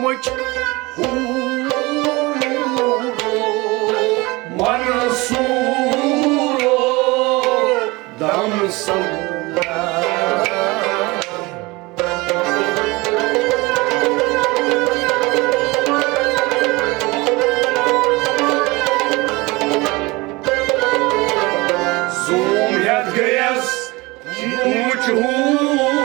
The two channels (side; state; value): left; quieter; 23.4 dB